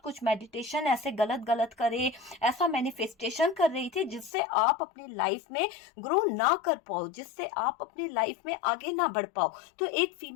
कुछ मेडिटेशन ऐसे गलत गलत करे, ऐसा मैनिफेस्टेशन कर रही थी जिससे आप आप अपनी लाइफ में ग्रो ना कर पाओ, जिससे आप अपनी लाइफ में आगे ना बढ़ पाओ। तो एक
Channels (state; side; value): drops out; right; at 4.3 s